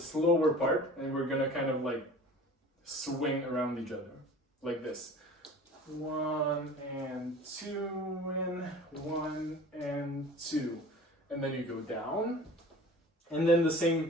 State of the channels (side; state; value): both; normal; correlation 0.42